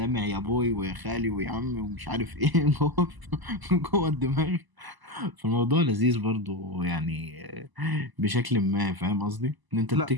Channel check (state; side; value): late; left; 1.0 ms